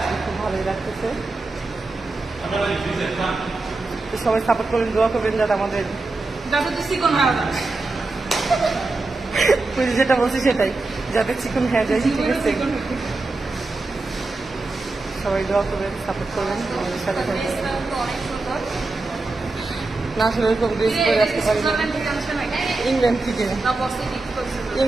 খুব ভালোই লাগতেছে। সবাই সাপোর্ট করবেন, দোয়া করবেন যাতে আমাদের যেটা বলছি সেটাই, যাতে চিকন হয়ে যায়। ঠিক আছে, সবাই দোয়া করবেন, সাপোর্ট করবেন আমাদের সাথে থাকবেন। না আসলে এরকম ড্রেস করে আসতে পারি না। ইংল্যান্ড থেকে,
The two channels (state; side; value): quieter; left; 3.4 dB